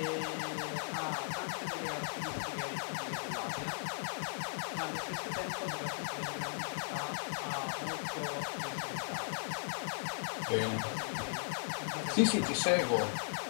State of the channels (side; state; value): right; silent; digital silence